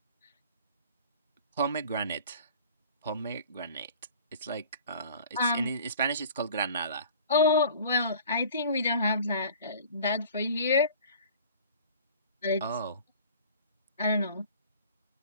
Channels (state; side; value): inverted; both; correlation -0.46